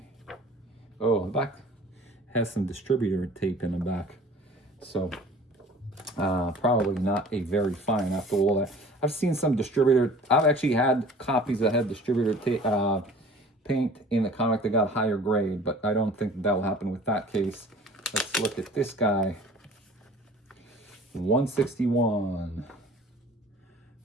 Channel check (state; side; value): normal; both; correlation 0.46